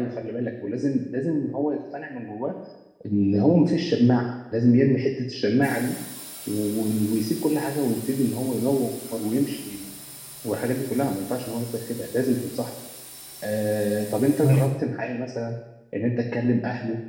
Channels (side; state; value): both; identical; correlation 1.00